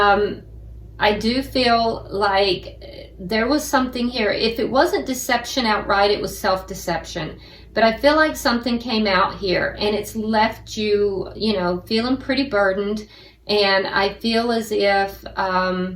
do feel like there was something here. If it wasn't deception outright, it was self-deception. But I feel like something came out here and it's left you, you know, feeling pretty burdened. And I feel as if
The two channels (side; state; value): both; identical; correlation 1.00